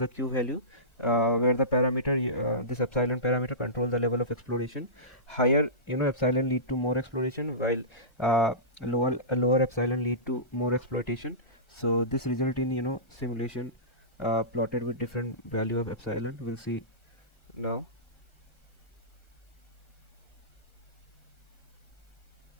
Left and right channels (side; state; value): right; late; 1.4 ms